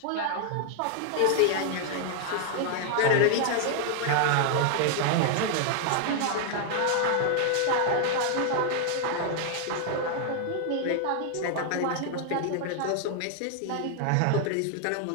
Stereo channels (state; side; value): different; both; correlation 0.00